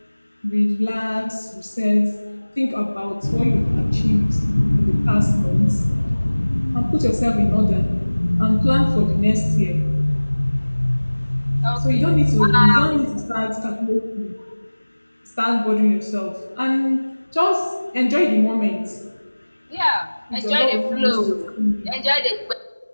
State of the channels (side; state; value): both; inverted; correlation -1.00